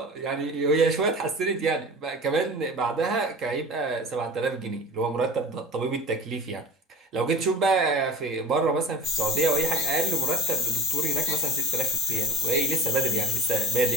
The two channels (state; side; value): normal; both; correlation 0.38